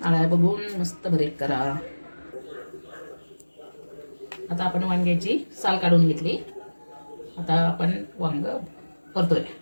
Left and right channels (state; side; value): inverted; both; correlation -1.00